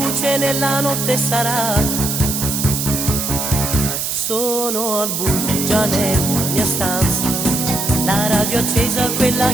nella notte sarà. Sono al buio già nella mia stanza, la radio accesa, quella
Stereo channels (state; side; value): noise; right; hiss, 2 dB below the sound